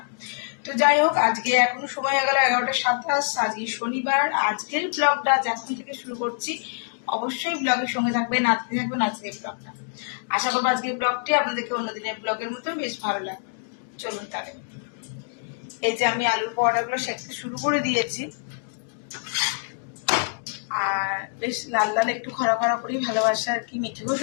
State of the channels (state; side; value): silent; right; digital silence